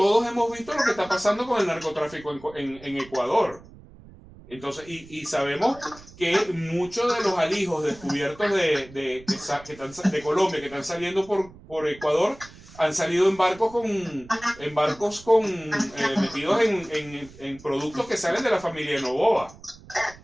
hemos visto lo que está pasando con el narcotráfico en Ecuador. Entonces, y sabemos que muchos de los alijos descubiertos de Colombia que están saliendo por Ecuador han salido en barcos metidos en productos que salen de la familia de Noboa.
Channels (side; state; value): right; noise; rumble, 21 dB below the sound